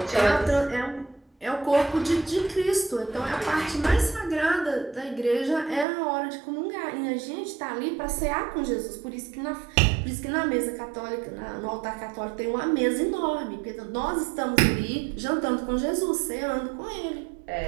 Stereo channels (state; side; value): drops out; left; at 5.9 s